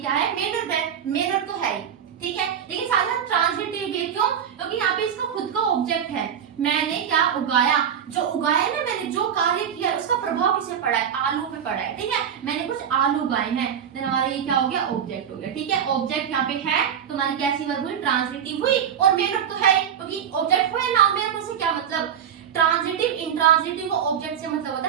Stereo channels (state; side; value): quieter; left; 8.5 dB